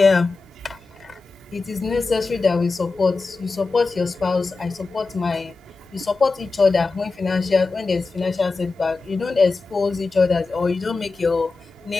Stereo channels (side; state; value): right; quieter; 3.9 dB